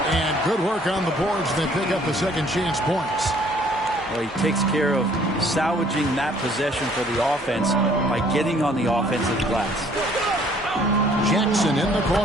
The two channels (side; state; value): both; normal; correlation 0.60